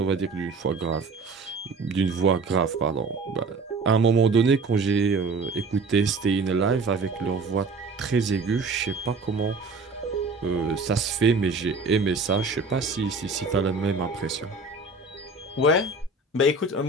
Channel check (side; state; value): left; quieter; 3.7 dB